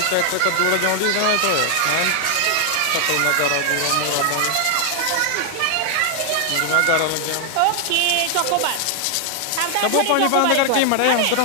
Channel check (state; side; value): different; both; correlation 0.00